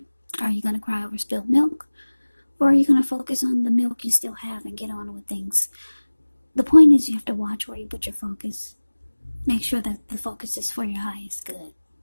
Are you going to cry over spilled milk? Or are you going to focus on the milk you still have and get on with things? The point is you have to watch where you put your focus. Make sure that the focus is for your highest good.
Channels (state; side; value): inverted; both; correlation -1.00